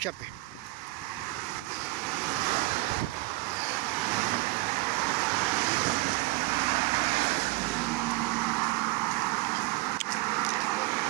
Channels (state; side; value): quieter; left; 23.3 dB